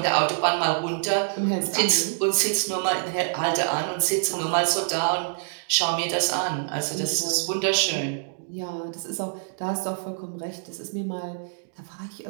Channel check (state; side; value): silent; left; digital silence